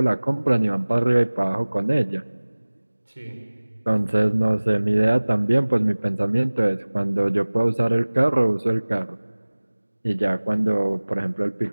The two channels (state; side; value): inverted; both; correlation -1.00